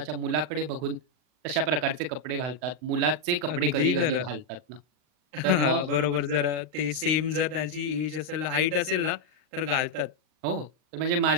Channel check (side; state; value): left; late; 39 ms